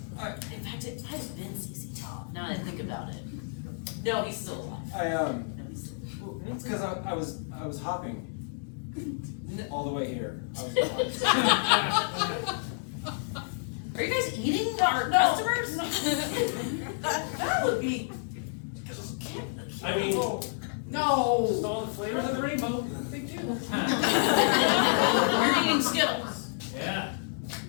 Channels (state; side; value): silent; right; digital silence